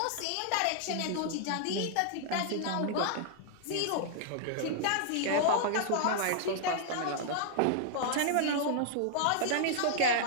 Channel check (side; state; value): both; different; correlation -0.01